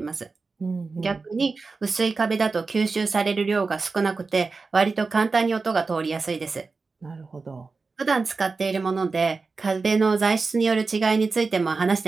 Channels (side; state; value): left; quieter; 4.2 dB